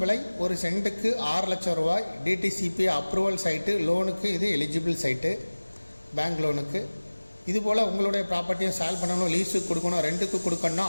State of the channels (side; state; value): both; inverted; correlation -1.00